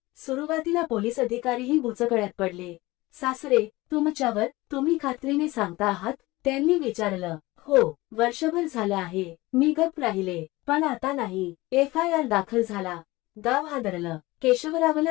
सुरुवातीला पोलीस अधिकारीही बुचकळ्यात पडले. सासरे, तुमच्यावर तुम्ही खात्रीने सांगता आहात, त्यांनी विचारलं. हो, वर्षभर झालं आहे. मी गप्प राहिले, पण आता नाही. FIR दाखल झाला. गाव हादरलं. केशवरावला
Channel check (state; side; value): quieter; right; 20.2 dB